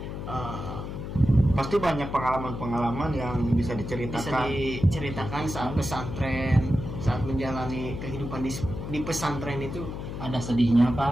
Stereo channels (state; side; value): noise; left; hum, 7 dB below the sound